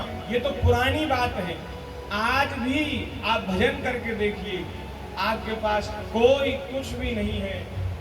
ये तो पुरानी बात है, आज भी आप भजन करके देखिए, आपके पास कोई कुछ भी नहीं है,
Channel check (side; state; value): both; identical; correlation 1.00